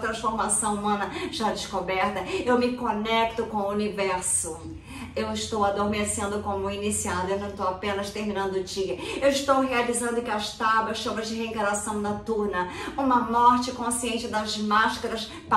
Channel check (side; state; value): both; identical; correlation 1.00